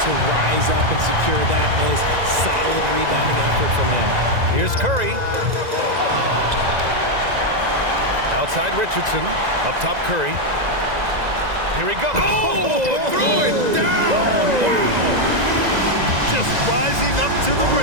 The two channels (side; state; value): left; late; 2.0 ms